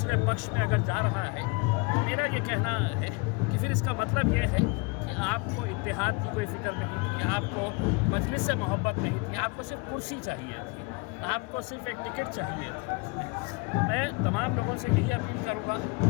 पक्ष में अगर जा रहा है तो मेरा ये कहना है कि फिर इसका मतलब ये है कि आपको इत्तेहाद की कोई फ़िक्र नहीं थी, आपको मजलिस से मोहब्बत नहीं थी, आपको सिर्फ कुर्सी चाहिए थी, आपको सिर्फ एक टिकट चाहिए थी। मैं तमाम लोगों से यही अपील करूँगा,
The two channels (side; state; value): right; quieter; 28.7 dB